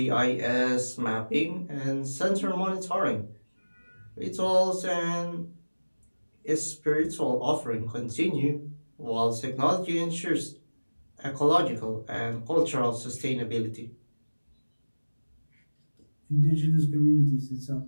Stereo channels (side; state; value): both; inverted; correlation -1.00